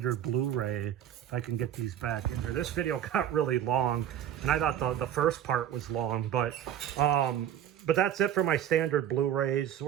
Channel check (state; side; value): quieter; left; 10.5 dB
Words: Blu-ray. If I can get these back in here. This video got really long, and I thought the first part was long, but that's it for my standard Blu-rays.